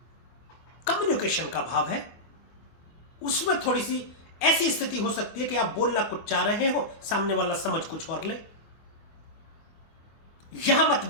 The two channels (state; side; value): late; right; 24 ms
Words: कम्युनिकेशन का भाव है, उसमें थोड़ी सी ऐसी स्थिति हो सकती है कि आप बोलना कुछ चाह रहे हो, सामने वाला समझ कुछ और ले। यहां